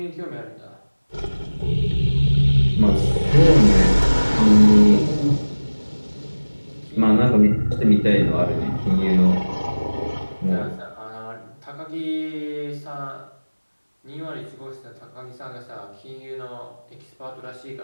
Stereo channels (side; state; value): both; inverted; correlation -1.00